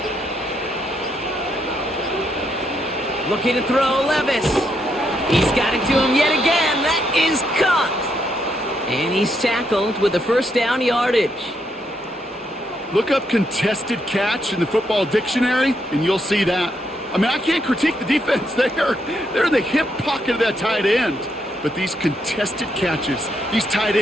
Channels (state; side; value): normal; both; correlation 0.77